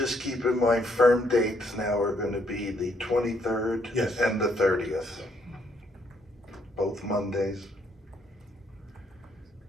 keep in mind, firm dates now are gonna be the 23rd Yes. and the 30th. Both Mondays.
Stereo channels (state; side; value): normal; both; correlation 0.71